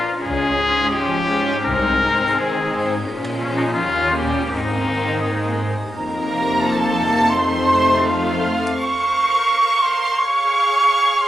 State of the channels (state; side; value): normal; both; correlation 0.89